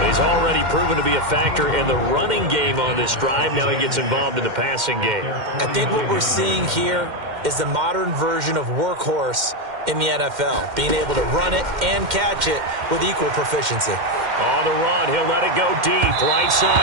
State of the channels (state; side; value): late; left; 2.1 ms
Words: He's already proven to be a factor in the running game on this drive. Now he gets involved in the passing game. I think what we're seeing here is the modern version of workhorse in the NFL, being able to run it and catch it with equal proficiency. On the run, he'll let it go deep, right